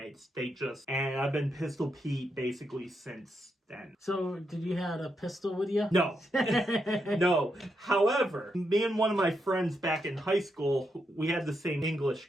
And I've been Pistol Pete basically since then. So, did you have a pistol with you? No. No. However, me and one of my friends back in high school, we had the same English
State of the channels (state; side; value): normal; both; correlation 0.82